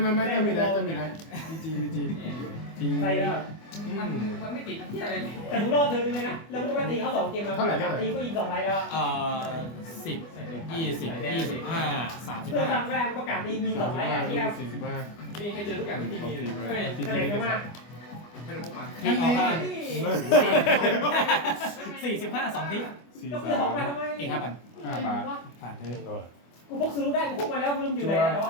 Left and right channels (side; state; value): right; late; 24 ms